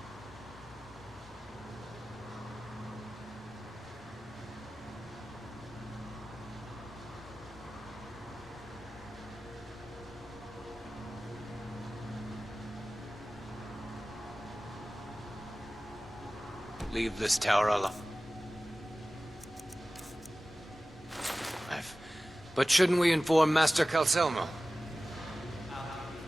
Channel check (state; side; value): normal; both; correlation 0.97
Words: Leave this tower alone. But shouldn't we inform Master Calcelmo?